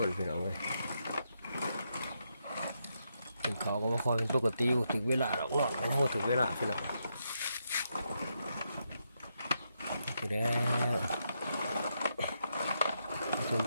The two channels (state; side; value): inverted; both; correlation -0.81